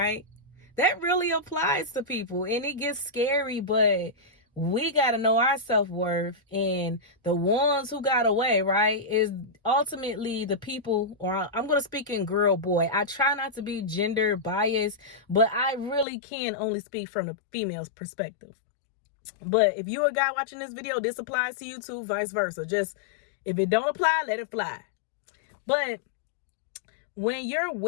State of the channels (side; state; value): right; drops out; at 16.1 s